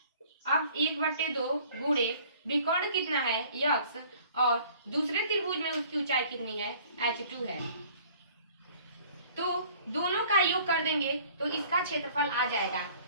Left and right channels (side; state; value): both; inverted; correlation -0.53